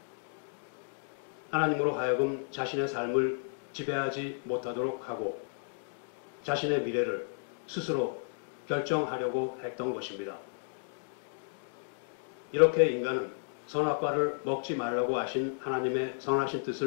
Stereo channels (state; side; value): silent; right; digital silence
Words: 하나님으로 하여금 자신의 삶을 지배하지 못하도록 하고 자신의 미래를 스스로 결정하려고 했던 것입니다. 이렇게 인간은 선악과를 먹지 말라고 하신 하나님의 선하신